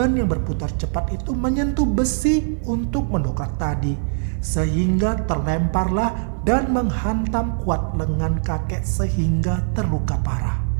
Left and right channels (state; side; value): silent; left; 59 dB below the other